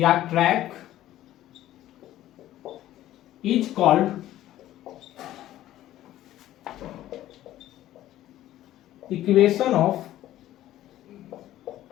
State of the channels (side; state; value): right; quieter; 13.8 dB